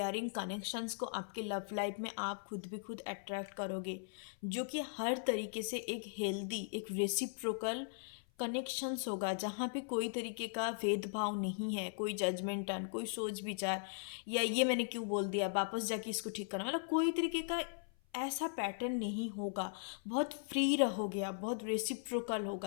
कनेक्शंस को आपके लव लाइफ में आप खुद भी खुद अट्रैक्ट करोगे, जो कि हर तरीके से एक हेल्दी, एक रेसिप्रोकल कनेक्शंस होगा, जहाँ पे कोई तरीके का भेदभाव नहीं है, कोई जजमेंटन, कोई सोच विचार, या ये मैंने क्यों बोल दिया वापस जाके इसको ठीक करना, मतलब कोई तरीके का ऐसा पैटर्न नहीं होगा। बहुत फ्री रहोगे आप, बहुत रेसिप्रोकल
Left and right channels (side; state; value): right; silent; 52 dB below the other